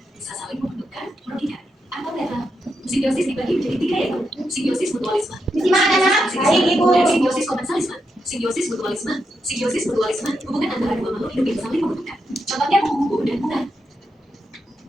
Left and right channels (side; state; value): both; normal; correlation 0.84